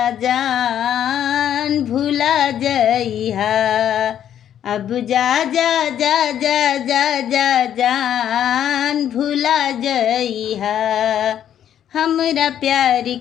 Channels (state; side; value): quieter; right; 10.1 dB